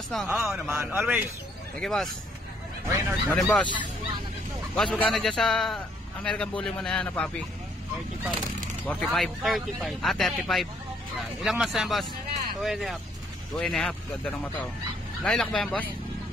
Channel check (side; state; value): both; normal; correlation 0.67